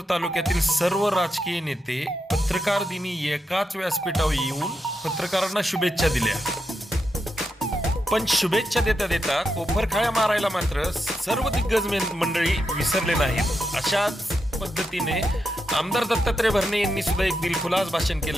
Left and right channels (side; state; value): both; normal; correlation 0.85